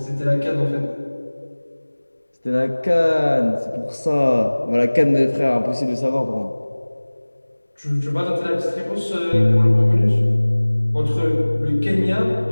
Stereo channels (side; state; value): both; inverted; correlation -1.00